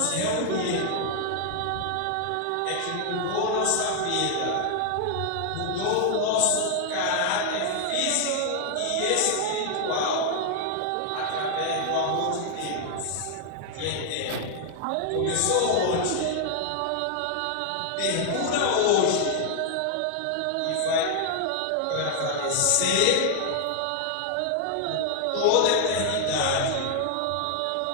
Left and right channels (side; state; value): both; different; correlation 0.00